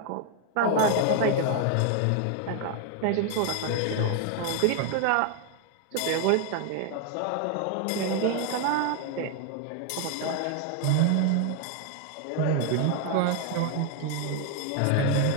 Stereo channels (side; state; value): both; different; correlation 0.00